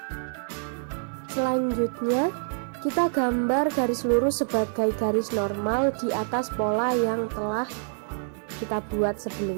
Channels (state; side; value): silent; left; digital silence